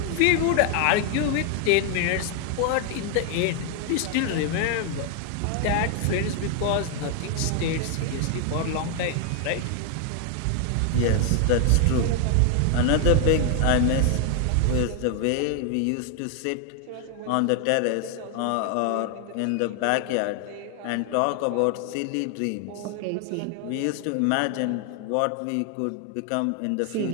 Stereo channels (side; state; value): both; different; correlation 0.00